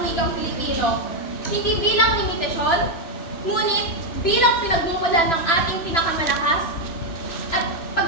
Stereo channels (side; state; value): right; late; 3.0 ms